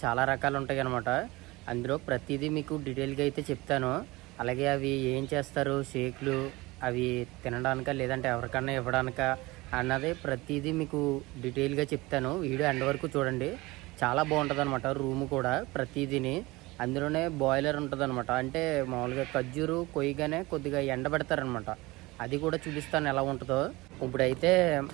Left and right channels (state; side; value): quieter; left; 21.6 dB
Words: చాలా రకాలు ఉంటాయి అనమాట. అందులో ప్రతిదీ మీకు డీటెయిల్గా అయితే చెప్తాను. అలాగే అవి ఏం చేస్తారు, షేక్లు అవి తినడానికా లేదంటే ఎవరికన్నా ఇవ్వడానికా అన్నది ప్రతిదీ మీకు డీటెయిల్గా చెప్తాను. వీడియో ఎండ్ వరకు చూడండి, చాలా బాగుంటుంది అనమాట. రూమ్ కూడా ప్రతిదీని అందులోనే బాయిలర్ ఉంటుంది అనమాట. అంటే మామూలుగా ఖర్జూరు కొయ్యగానే కొద్దిగా ఎండబెడతారనమాట. అది కూడా చూపిస్తాను ఎలా ఉంటుందో. ఇప్పుడైతే